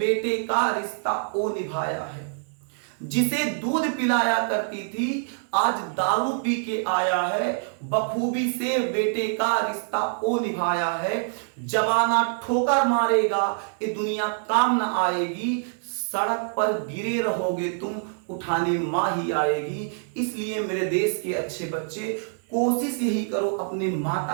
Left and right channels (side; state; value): left; silent; digital silence